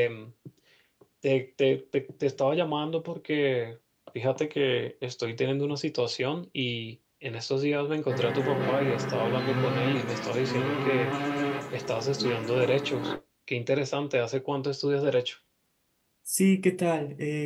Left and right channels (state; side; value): identical; both; correlation 1.00